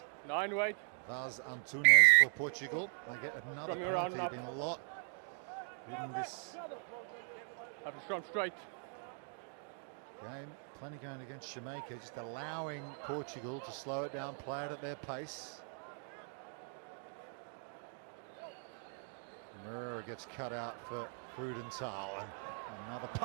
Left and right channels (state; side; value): silent; left; 51 dB below the other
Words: 9 weight. Vaz Antunes for Portugal. They get another Scrumming around penalty. and up. Been a lot in this Have to scrum straight. game. Plenty going against Jamaica, just allowing Portugal to slow it down, play it at their pace. Murrah gets cut out for Frudenthal, and another